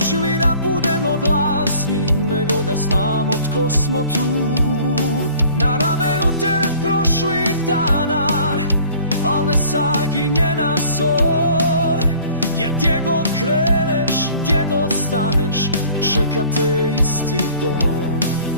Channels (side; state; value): both; inverted; correlation -0.51